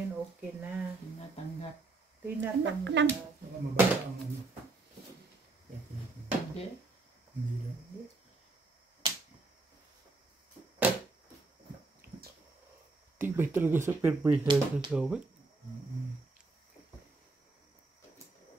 okay na. Tinatanggap. Tinatanggap. Baka mababa ang ano. Hindi. Hindi lang. Tibay talaga sa perpetual sa gawin.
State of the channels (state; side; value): quieter; left; 3.5 dB